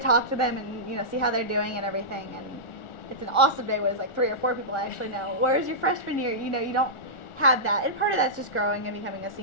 to talk to them and, see how they're doing and everything. And it's an awesome day when it's 3 or 4 people I actually know. Whereas your freshman year, you don't have that. And part of that's just growing and becoming a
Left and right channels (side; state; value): right; late; 1.4 ms